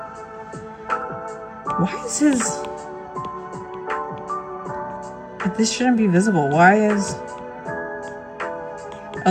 Why is his... This shouldn't be visible. Why is...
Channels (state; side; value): identical; both; correlation 1.00